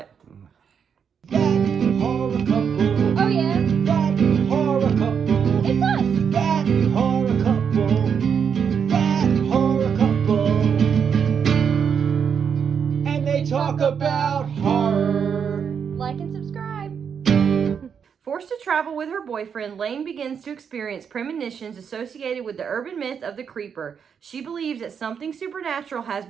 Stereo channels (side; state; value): left; quieter; 7.1 dB